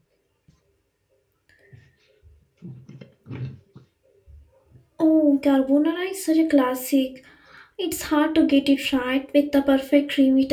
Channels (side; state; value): both; identical; correlation 1.00